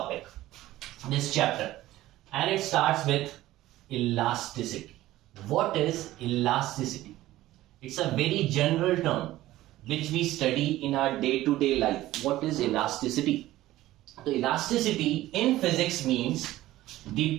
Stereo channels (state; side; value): quieter; left; 15.7 dB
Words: this chapter. And it starts with elasticity. What is elasticity? It's a very general term which we study in our day-to-day life. What is elasticity? So elasticity in physics means the